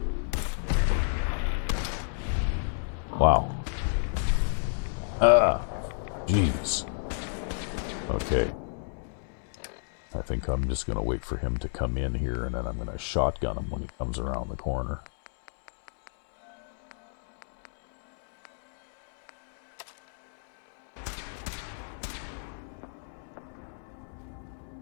Wow. Ah, jeez. Okay. I think I'm just going to wait for him to come in here, and then I'm going to shotgun him when he comes around the corner.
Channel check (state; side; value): silent; right; 58 dB below the other